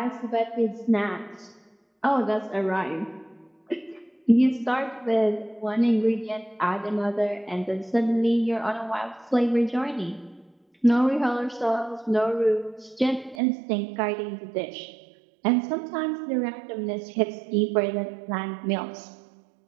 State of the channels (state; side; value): drops out; left; at 13.4 s